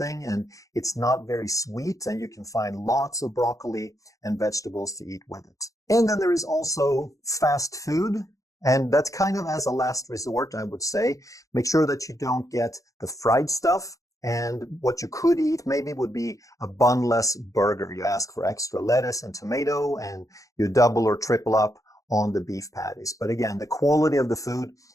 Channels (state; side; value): late; right; 0.16 ms